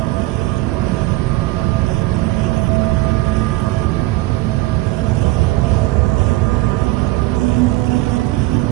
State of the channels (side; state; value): left; quieter; 19.0 dB